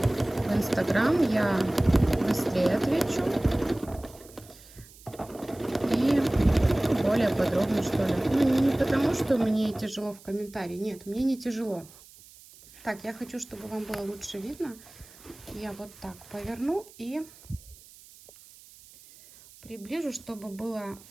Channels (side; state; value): right; noise; hiss, 22 dB below the sound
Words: в Инстаграм, я быстрее отвечу. И более подробно, что ли. Ну, не потому, что мне тяжело в комментарии. Нет, мне не тяжело. Так, я хочу, чтобы вам было лучше видно. Я вот так поверну и приближу, чтобы было